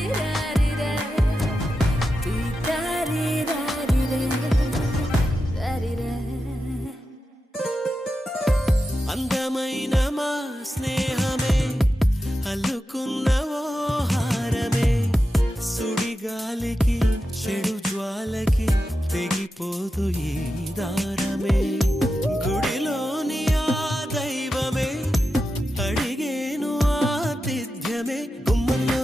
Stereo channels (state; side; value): normal; both; correlation 0.90